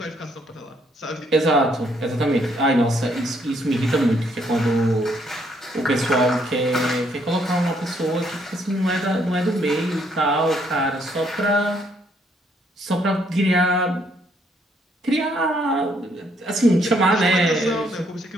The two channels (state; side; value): normal; both; correlation 0.70